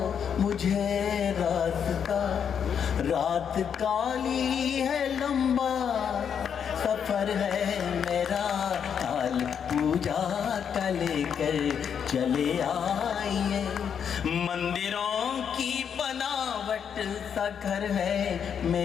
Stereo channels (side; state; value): right; quieter; 7.7 dB